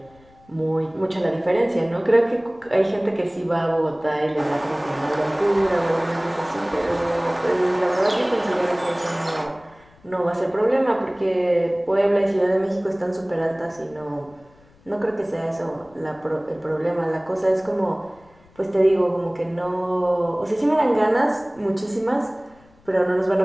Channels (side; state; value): left; noise; rumble, 29 dB below the sound